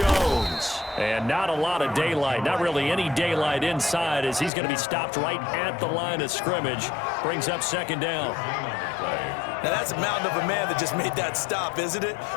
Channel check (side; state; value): right; drops out; at 4.5 s